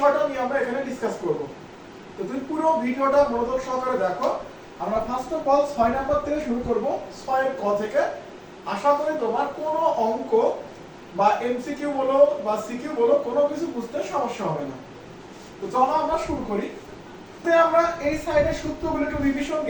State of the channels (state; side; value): identical; both; correlation 1.00